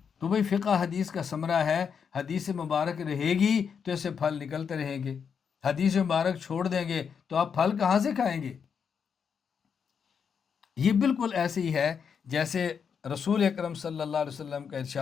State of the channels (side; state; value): right; quieter; 6.8 dB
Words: تو بھئی فقہ حدیث کا ثمرہ ہے، حدیث مبارک رہے گی تو اسے پھل نکلتے رہیں گے، حدیث مبارک چھوڑ دیں گے تو آپ پھل کہاں سے کھائیں گے؟ یہ بالکل ایسے ہی ہے جیسے رسول اکرم صلی اللہ علیہ وسلم کا